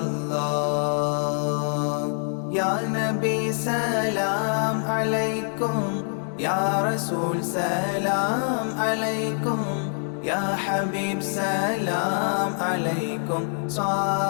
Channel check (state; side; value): silent; right; 62 dB below the other